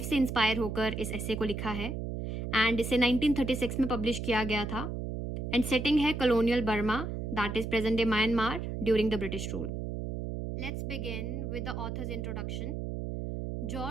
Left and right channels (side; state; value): right; noise; hum, 4 dB below the sound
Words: से इंस्पायर होकर इस एसे को लिखा है एंड इसे 1936 में पब्लिश किया गया था। एंड सेटिंग है colonial Burma that is present day Myanmar during the British rule. Let's begin with the author's introduction.